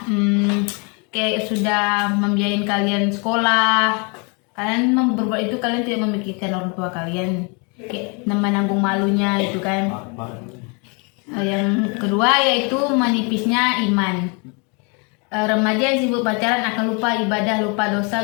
sudah membiayain kalian sekolah. Kalian berbuat itu, kalian tidak memikirkan orang tua kalian, kayak menanggung malunya itu kan. Yang kedua yaitu menipisnya iman. Remaja yang sibuk pacaran akan lupa ibadah, lupa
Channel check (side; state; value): right; quieter; 33.2 dB